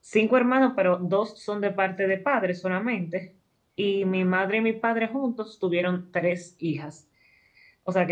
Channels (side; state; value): both; identical; correlation 1.00